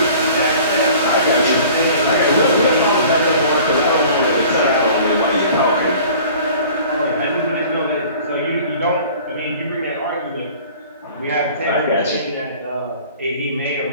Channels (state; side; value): inverted; both; correlation -0.47